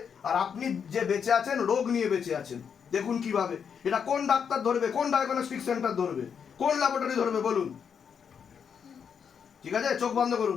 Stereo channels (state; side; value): quieter; right; 7.1 dB